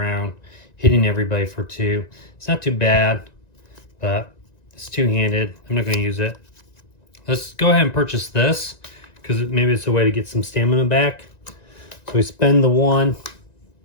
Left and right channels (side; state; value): right; late; 1.9 ms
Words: hitting everybody for 2. It's not too bad, but it's 2-handed. I'm not going to use it. Let's go ahead and purchase this, because maybe it's a way to get some stamina back. So we spend the 1.